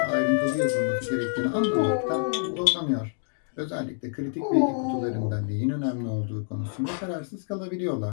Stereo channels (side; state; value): right; silent; 60 dB below the other